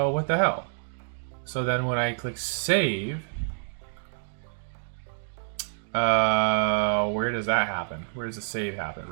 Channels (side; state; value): left; silent; digital silence